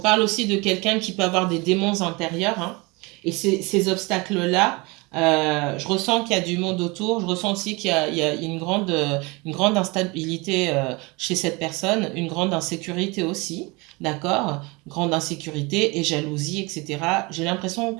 aussi de quelqu'un qui peut avoir des démons intérieurs. Hein. Et ces obstacles-là, je ressens qu'il y a du monde autour. Je ressens aussi qu'il y a une grande instabilité chez cette personne, une grande insécurité aussi. D'accord? Grande insécurité et jalousie, etc. J'ai l'impression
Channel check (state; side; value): quieter; left; 26.0 dB